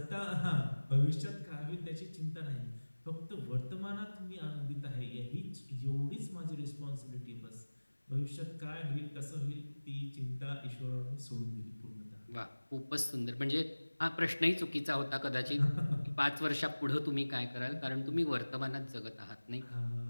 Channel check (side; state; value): both; inverted; correlation -1.00